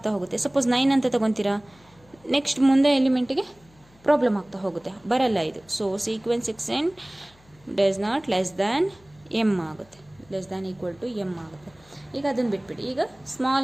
ಹೋಗುತ್ತೆ. ಸಪೋಸ್ 9 ಅಂತ ತಗೊತೀರಾ, ನೆಕ್ಸ್ಟ್ ಮುಂದೆ ಎಲಿಮೆಂಟಿಗೆ ಪ್ರಾಬ್ಲಮ್ ಆಗ್ತಾ ಹೋಗುತ್ತೆ, ಬರಲ್ಲ ಇದು. So sequence x n does not less than m ಆಗುತ್ತೆ, less than equal to m ಆಗುತ್ತೆ. ಈಗ ಅದನ್ನು ಬಿಟ್ಬಿಡಿ. ಈಗ ಸ್ಮಾಲ್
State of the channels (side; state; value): left; noise; hum, 29 dB below the sound